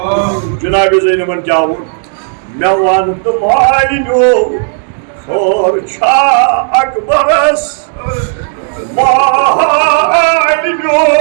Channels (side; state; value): left; silent; digital silence